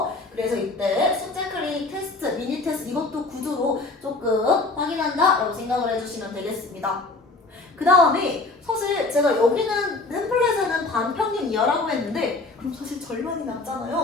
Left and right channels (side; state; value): right; quieter; 3.4 dB